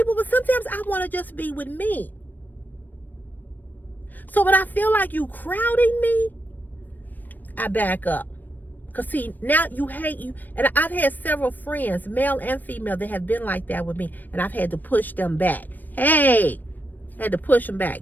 but sometimes I want to just be with me. So when I feel like you crowding me, I back up. Because see, now you hate you. And I've had several friends, male and female, that have been like that with me. And I've had to push them back. Hey, I had to push them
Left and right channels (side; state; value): right; late; 0.088 ms